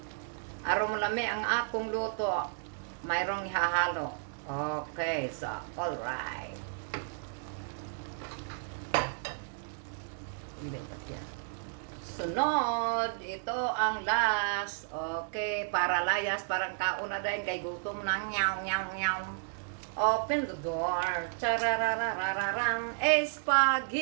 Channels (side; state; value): left; silent; 56 dB below the other